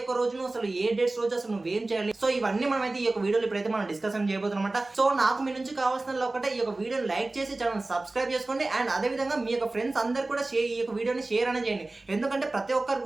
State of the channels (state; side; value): quieter; left; 3.0 dB